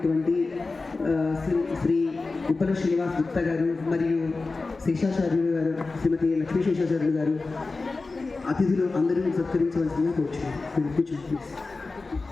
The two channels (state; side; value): quieter; right; 3.7 dB